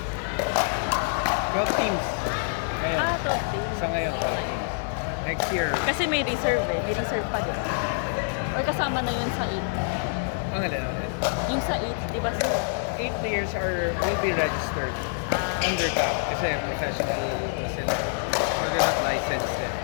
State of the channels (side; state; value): right; silent; digital silence